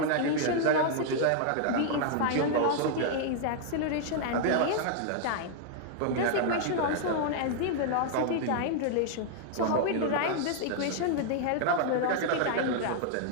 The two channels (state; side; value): different; both; correlation 0.00